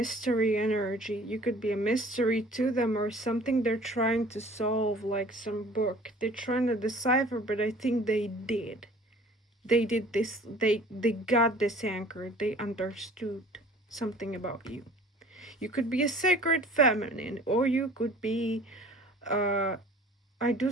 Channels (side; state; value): both; normal; correlation 0.49